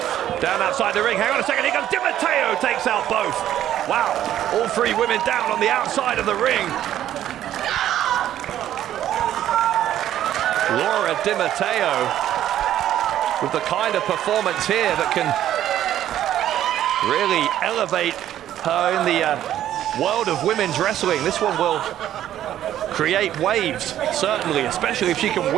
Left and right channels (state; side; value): quieter; left; 11.8 dB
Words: down outside the ring. Hang on a second, here comes Di Matteo, takes out both. Wow, all three women down on the outside of the ring. Laura Di Matteo with the kind of performance here that can really elevate her in the world of women's wrestling. This one will create waves, certainly, especially if she can